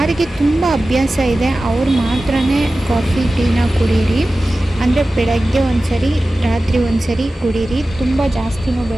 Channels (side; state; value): both; normal; correlation 0.95